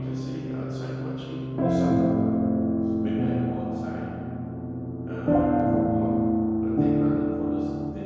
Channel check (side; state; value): both; identical; correlation 1.00